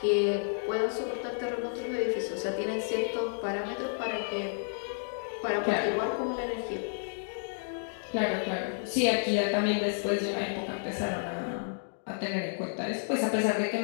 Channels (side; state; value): right; silent; digital silence